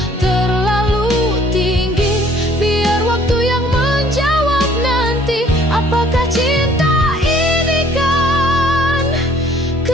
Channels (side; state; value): both; normal; correlation 0.58